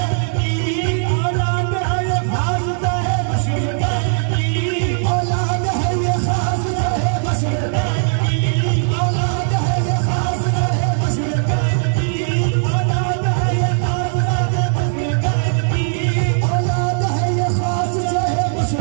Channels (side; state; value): left; silent; 66 dB below the other